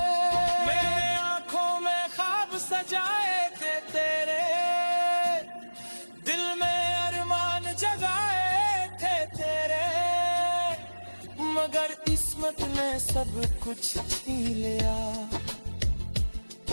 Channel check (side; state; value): both; inverted; correlation -1.00